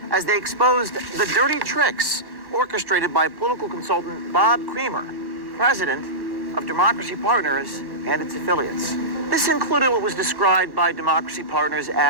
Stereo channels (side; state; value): left; late; 1.1 ms